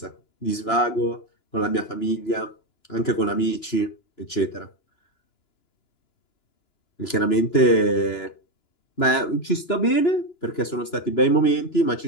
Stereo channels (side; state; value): right; late; 2.9 ms